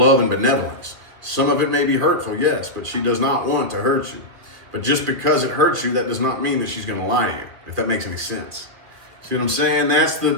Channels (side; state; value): left; late; 2.2 ms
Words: and benevolence. Some of it may be hurtful, yes, but she does not want to hurt you. But just because it hurts you, that does not mean that she's going to lie to you, if that makes any sense. See what I'm saying? That's